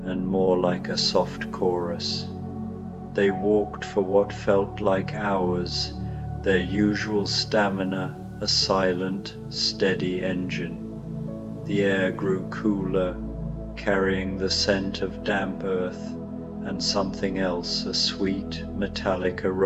and more like a soft chorus. They walked for what felt like hours, their usual stamina a silent, steady engine. The air grew cooler, carrying the scent of damp earth and something else, a sweet, metallic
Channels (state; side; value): identical; both; correlation 1.00